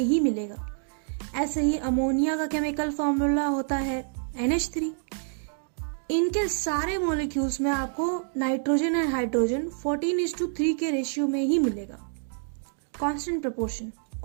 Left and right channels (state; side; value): silent; left; digital silence